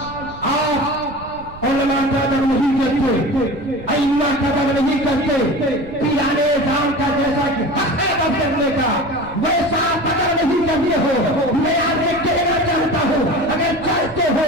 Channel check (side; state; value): right; noise; rumble, 17 dB below the sound